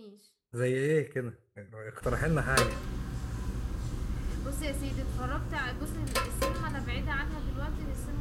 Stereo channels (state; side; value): identical; both; correlation 1.00